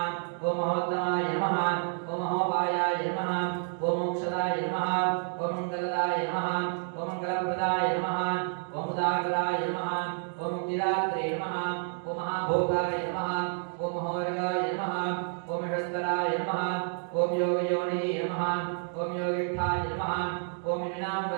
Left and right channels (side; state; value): left; silent; 58 dB below the other